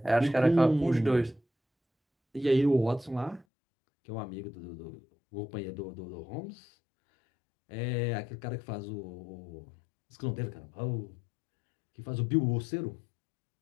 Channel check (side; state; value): right; drops out; at 3.5 s